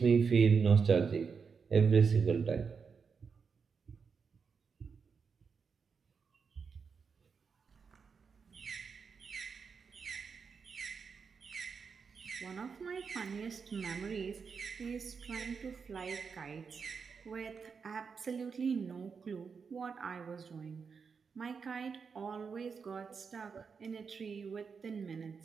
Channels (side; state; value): left; quieter; 5.7 dB